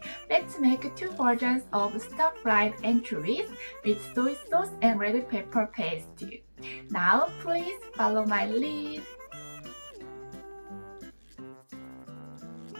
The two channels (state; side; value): inverted; both; correlation -1.00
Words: Let's make two versions of stir-fried anchovies with soy sauce and red pepper paste. Now please follow my lead.